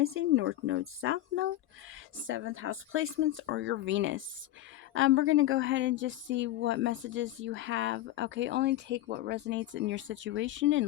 North Node, South Node, 7th house placements, or your Venus. We're going to go ahead and just see what messages you have. Okay, only take what resonates in your situation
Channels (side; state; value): right; quieter; 14.4 dB